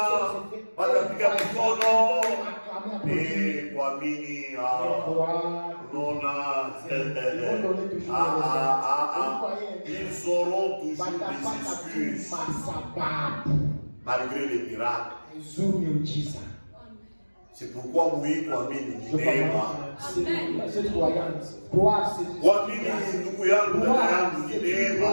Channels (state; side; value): inverted; both; correlation -1.00